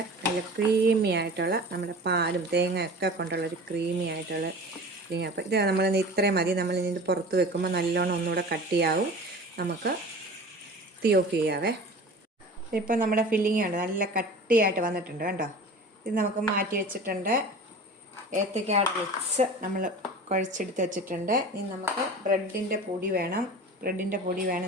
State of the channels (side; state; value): both; normal; correlation 0.38